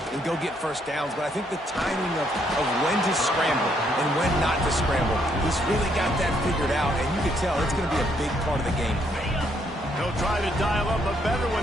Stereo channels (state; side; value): normal; both; correlation 0.71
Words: go get first downs, but I think the timing of when to scramble and when not to scramble, he's really got that figured out, and you can tell it's going to be a big part of the game. He'll try to dial up a better